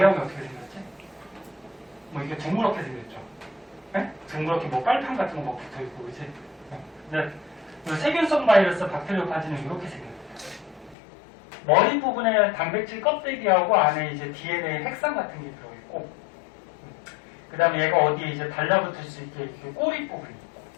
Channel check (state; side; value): drops out; right; at 11.0 s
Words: 어떻게 생겼지? 뭐 이게 둥그렇게 생겼죠. 네? 둥그렇게 뭐 빨판 같은 거 막 붙어 있고, 그지? 근데 세균성 바이러스 박테리오파지는 이렇게 생겼어요. 머리 부분에 단백질 껍데기하고 안에 이제 DNA 핵산 같은 게 들어있고, 그 다음에 얘가 어디에 이제 달라붙을 수 있게 이렇게 꼬리 부분이 있고.